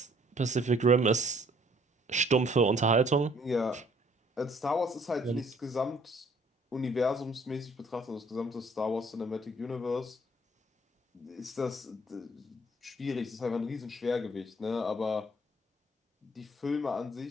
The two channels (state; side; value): normal; both; correlation 0.61